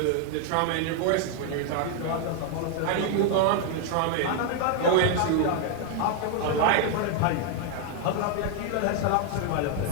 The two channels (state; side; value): different; both; correlation 0.00